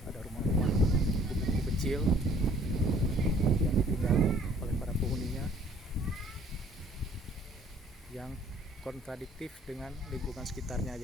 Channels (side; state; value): both; normal; correlation 0.57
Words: ada rumah-rumah gubuk kecil yang ditinggali oleh para penghuninya, yang kontradiktif dengan lingkungan sekitarnya